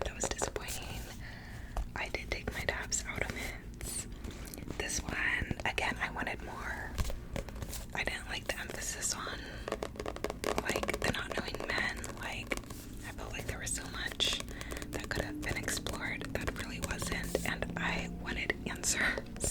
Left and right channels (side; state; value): both; identical; correlation 1.00